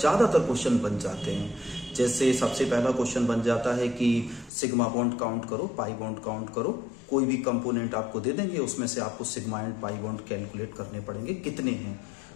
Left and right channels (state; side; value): drops out; right; at 4.5 s